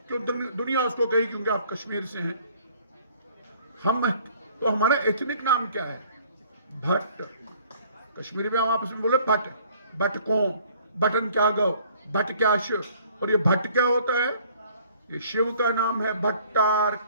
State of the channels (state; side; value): inverted; both; correlation -0.57